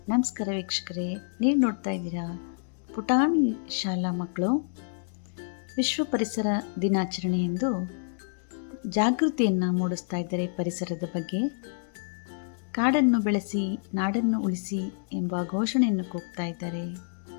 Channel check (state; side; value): silent; right; digital silence